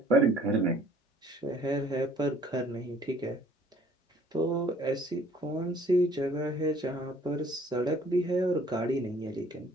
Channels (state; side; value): normal; both; correlation 0.57